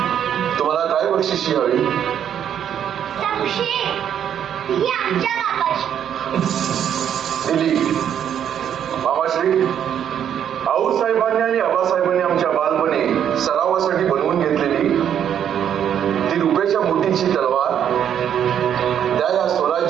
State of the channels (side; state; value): left; quieter; 9.3 dB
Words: तुम्हाला काय बक्षिशी हवी? संशय ही आमच्या बापाची. दिली. मामाश्री, आऊसाहेबांनी आणि आबासाहेबांनी आमच्या बालपणी सरावासाठी बनवून घेतलेली ती रुपयाच्या मोठीची तलवार त्या या